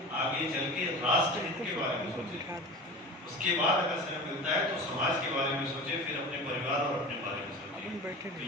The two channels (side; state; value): both; normal; correlation 0.33